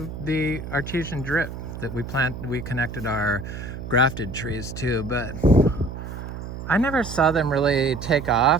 the artesian drip that we connected our grafted trees to, but I never saw them really take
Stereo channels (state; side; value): noise; right; hum, 9 dB below the sound